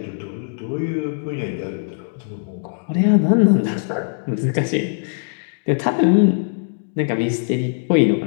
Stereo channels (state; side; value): silent; right; 65 dB below the other